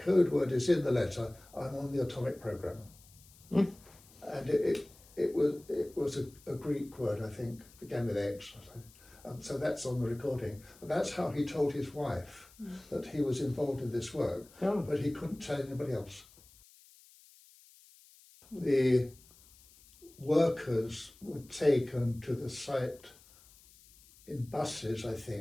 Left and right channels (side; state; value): left; noise; hiss, 25 dB below the sound